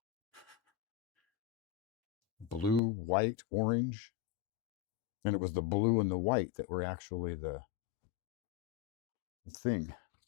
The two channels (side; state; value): right; drops out; at 2.8 s